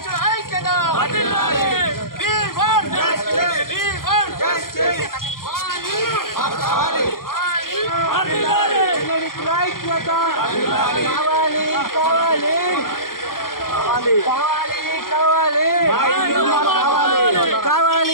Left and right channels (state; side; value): late; right; 0.92 ms